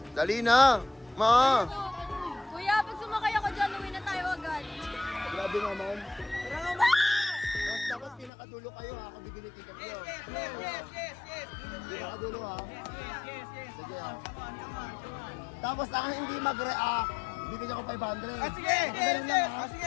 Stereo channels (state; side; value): drops out; right; at 8.3 s